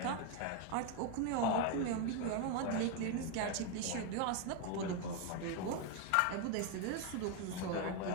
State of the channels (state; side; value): different; both; correlation 0.01